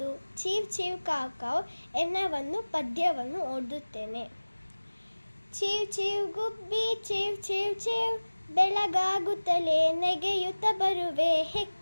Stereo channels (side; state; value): both; inverted; correlation -1.00